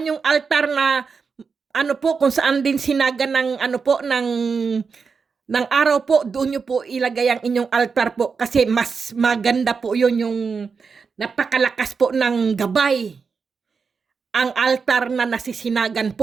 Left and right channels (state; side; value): quieter; left; 5.4 dB